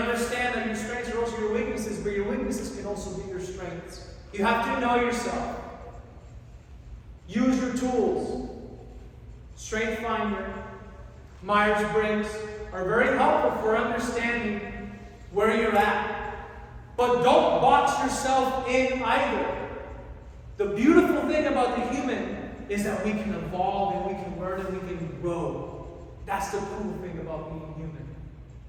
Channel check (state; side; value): identical; both; correlation 1.00